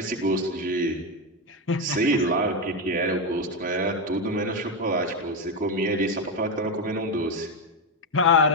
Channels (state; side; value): normal; both; correlation 0.09